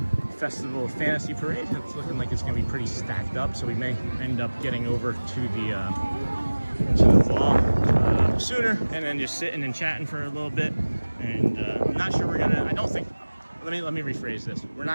Festival of Fantasy Parade. It's looking like it's going to be pretty stacked up, so we may end up getting over to the wall sooner and then just sitting and chatting for a little bit. And I'm not sure we're gonna. I don't think. Let me rephrase this. We're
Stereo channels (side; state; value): both; inverted; correlation -1.00